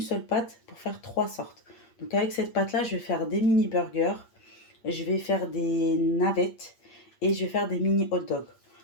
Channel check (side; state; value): right; late; 8.6 ms